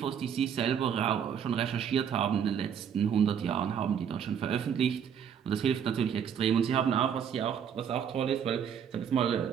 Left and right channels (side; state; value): left; quieter; 8.0 dB